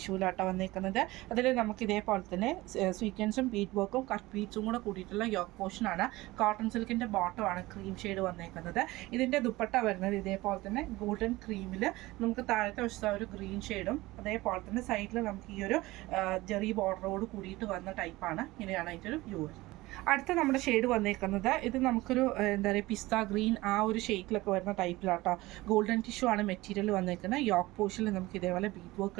വന്നേക്കുന്നത്. അതിൽ നമുക്ക് ഇതേപോലെ തന്നെ സ്വീക്വൻസും ബീഡ് വർക്കും കട്ട് ബീഡ്സും കൂടെ കൂടിയിട്ടുള്ള യോക്ക് പോർഷനാണ്. കോട്ടൺ സിൽക്കിൻ്റെ ബോട്ടമാണ് ക്രീം ഷെയ്ഡ് വന്നേക്കുന്നത്. ഇതിൻ്റെ ദുപ്പട്ട വരുന്നത് ഇതേപോലെ തന്നെ ഗോൾഡൻ ക്രീമിൽ നമുക്ക് താഴത്തെ വശത്ത് ഒരു ഗ്രീൻ ഷെയ്ഡും അതേപോലെ തന്നെ സൈഡിൽ നമുക്ക് ഈ ഒരു ജെറി ബോർഡറോട് കൂടിയിട്ട് വന്ന ടൈപ്പാണ്. ഇങ്ങനെയാണ് അതിൻ്റെ ഒരു വ്യൂ. അടുത്ത നമ്മുടെ ഷെയ്ഡ് വന്നേക്കുന്നത് ഇത് നമുക്കൊരു എന്താ പറയുക പിസ്ത ഗ്രീൻ ആ ഒരു ഷെയ്ഡിലൊക്കെ വരുന്ന ടൈപ്പിലാട്ടോ. ഗോൾഡൻ ടിഷ്യൂ ആണ് മെറ്റീരിയൽ വന്നേക്കുന്നത്. യോക്ക് പോർഷനിൽ നമുക്ക് ഇതേപോലെ ബീഡ് വർക്ക്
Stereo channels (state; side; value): quieter; left; 19.5 dB